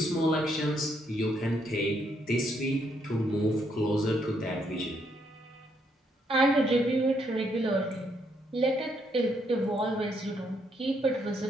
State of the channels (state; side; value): normal; both; correlation 0.74